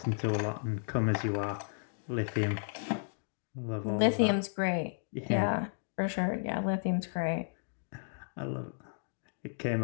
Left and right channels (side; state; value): right; silent; digital silence